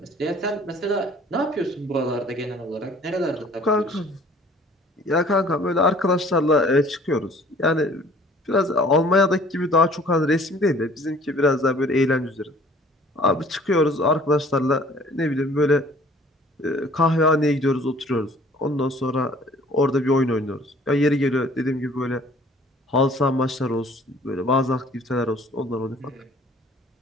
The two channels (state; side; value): normal; both; correlation 0.53